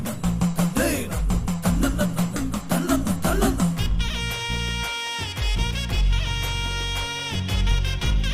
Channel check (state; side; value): identical; both; correlation 1.00